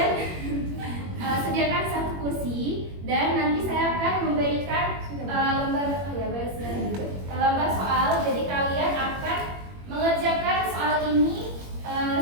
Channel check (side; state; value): left; late; 21 ms